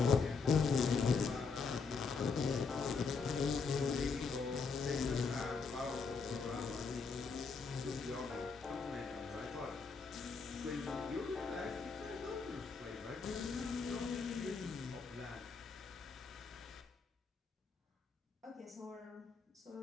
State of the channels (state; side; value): quieter; right; 4.9 dB